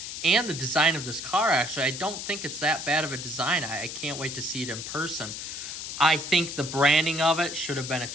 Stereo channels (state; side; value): noise; left; hiss, 7 dB below the sound